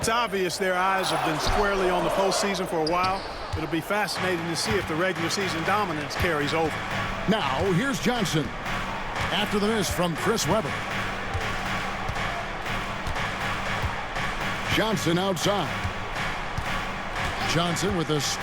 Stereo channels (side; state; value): both; identical; correlation 1.00